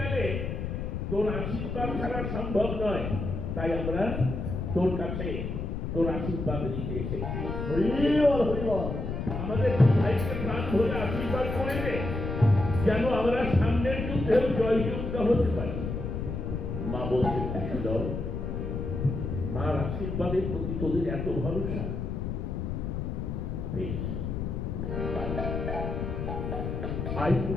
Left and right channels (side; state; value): left; noise; rumble, 3 dB below the sound